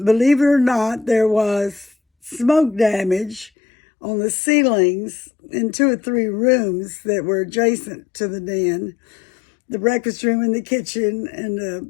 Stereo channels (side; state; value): right; drops out; at 3.5 s